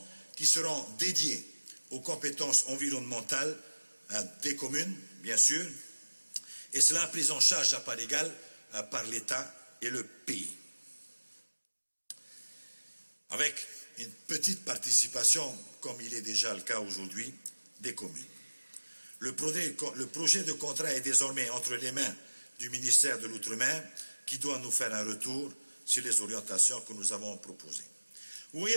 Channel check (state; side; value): inverted; both; correlation -1.00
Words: qui seront dédiés aux compétences environnementales des communes, bien sûr, et cela pris en charge à part égale par l'État et le pays. Avec une petite participation, comme il est déjà le cas aujourd'hui, des communes. Le projet de contrat est désormais entre les mains du ministère de l'Outre-mer qui doit nous faire un retour sur les orientations que nous avons proposées. Vous